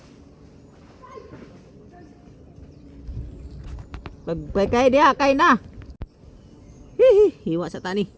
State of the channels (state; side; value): identical; both; correlation 1.00